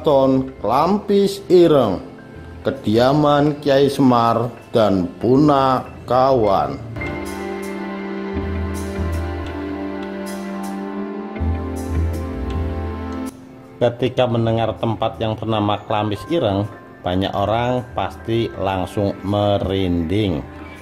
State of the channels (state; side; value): identical; both; correlation 1.00